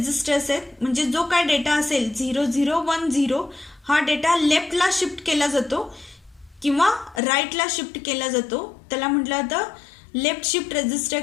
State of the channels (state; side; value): drops out; right; at 7.2 s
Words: आहेत. म्हणजे जो काय डेटा असेल 0010 हा डेटा लेफ्टला शिफ्ट केला जातो किंवा राईटला शिफ्ट केला जातो त्याला म्हटलं जातं लेफ्ट शिफ्ट रेजिस्टर